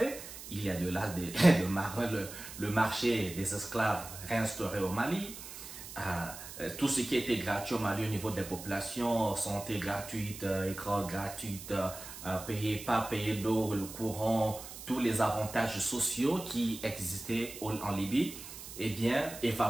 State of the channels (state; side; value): noise; right; hiss, 12 dB below the sound